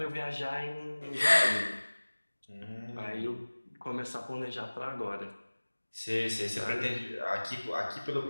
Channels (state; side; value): inverted; both; correlation -1.00